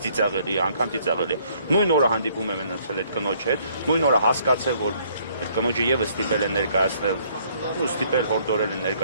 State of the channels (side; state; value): both; inverted; correlation -0.64